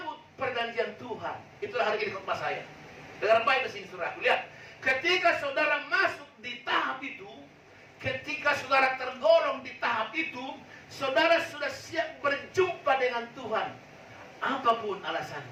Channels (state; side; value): identical; both; correlation 1.00